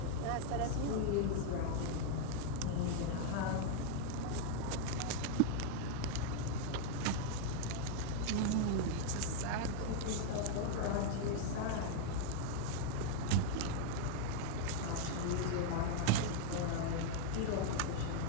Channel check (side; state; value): both; different; correlation 0.00